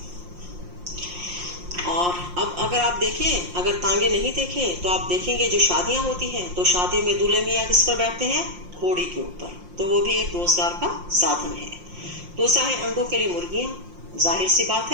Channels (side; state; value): left; late; 5.7 ms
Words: और अब अगर आप देखें, अगर तांगे नहीं देखे तो आप देखेंगे जो शादियां होती हैं तो शादियों में दूल्हे मियाँ किस पर बैठते हैं? घोड़ी के ऊपर। तो वो भी एक रोजगार का साधन है। दूसरा है अंडों के लिए मुर्गियां। जाहिर सी बात